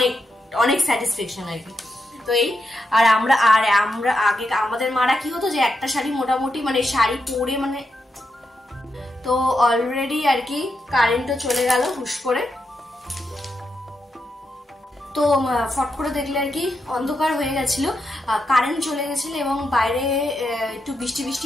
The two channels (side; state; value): both; normal; correlation 0.84